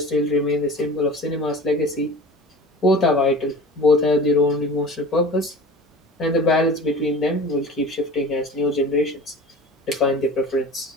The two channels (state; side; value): normal; both; correlation 0.39